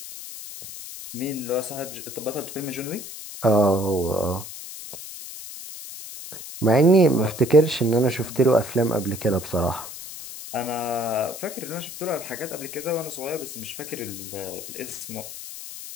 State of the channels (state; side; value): noise; left; hiss, 11 dB below the sound